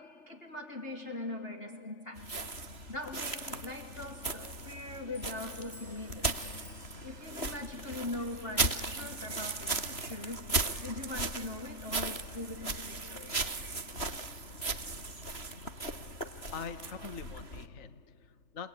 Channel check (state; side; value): late; right; 3.4 ms